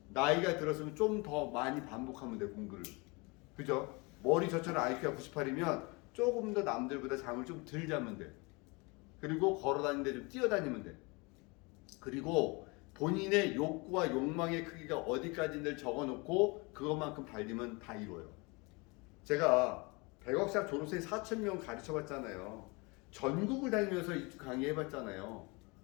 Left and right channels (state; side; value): quieter; right; 27.7 dB